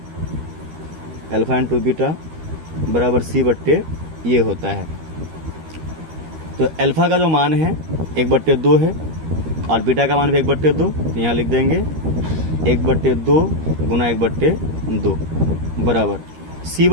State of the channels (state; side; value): late; left; 13 ms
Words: अल्फा इंटू बीटा बराबर c बट्टे ये होता है। तो अल्फा का जो मान है 1/2 है और बीटा का मान भी 1/2, तो यहाँ लिख देंगे 1/2 गुना 1/2 बराबर c